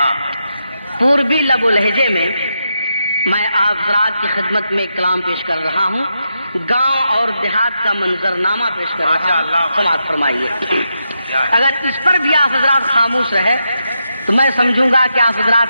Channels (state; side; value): inverted; both; correlation -0.85